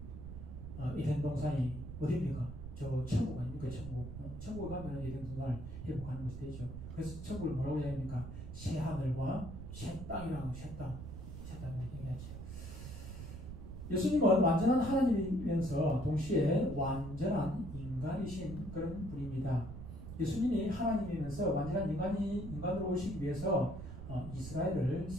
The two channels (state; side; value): noise; right; rumble, 9 dB below the sound